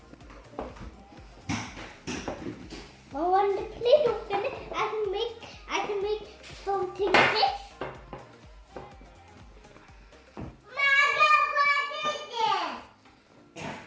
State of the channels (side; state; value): both; identical; correlation 1.00